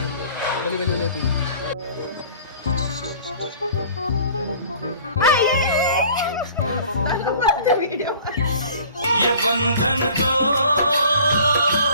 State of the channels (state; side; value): inverted; both; correlation -0.48